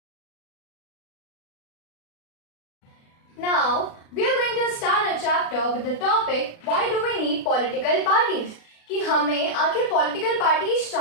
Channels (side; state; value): right; late; 36 ms